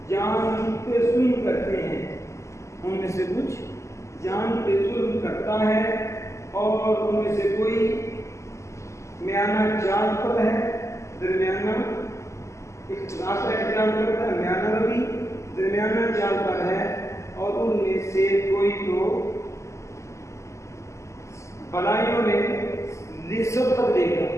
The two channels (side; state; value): right; late; 0.14 ms